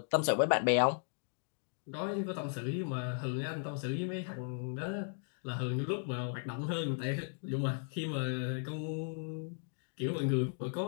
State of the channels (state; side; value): silent; right; 54 dB below the other